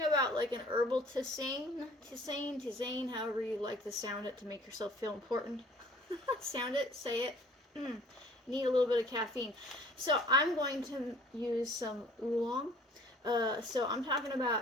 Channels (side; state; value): both; normal; correlation 0.53